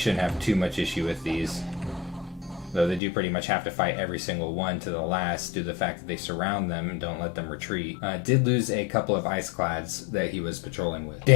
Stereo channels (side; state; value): right; drops out; at 3.0 s